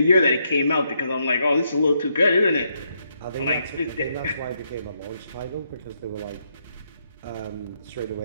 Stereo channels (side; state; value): both; inverted; correlation -0.78